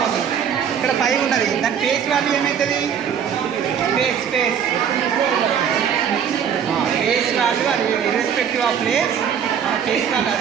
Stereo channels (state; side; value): quieter; left; 8.1 dB